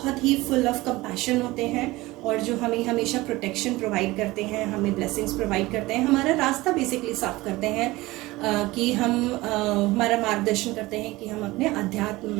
ही फुल ऑफ कंपैशन होते हैं, और जो हमें हमेशा प्रोटेक्शन प्रोवाइड करते हैं, हमें ब्लेसिंग्स प्रोवाइड करते हैं, हमारा रास्ता बेसिकली साफ करते हैं कि हम हमारा मार्गदर्शन करते हैं कि हम अपने अध्यात्म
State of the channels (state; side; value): quieter; left; 19.8 dB